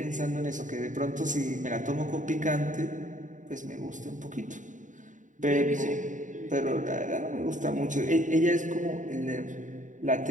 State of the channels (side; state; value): left; late; 0.37 ms